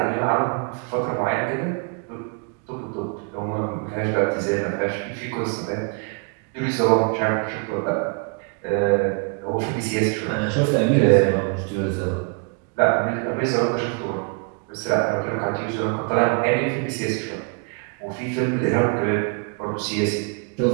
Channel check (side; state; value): left; quieter; 37.2 dB